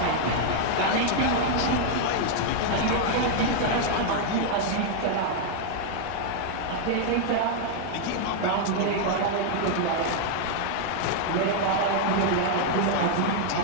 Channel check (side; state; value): both; different; correlation -0.01